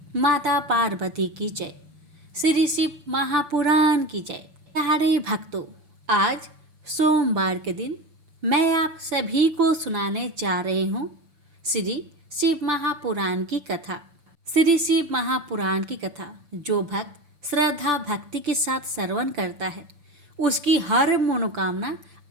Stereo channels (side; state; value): left; late; 6.8 ms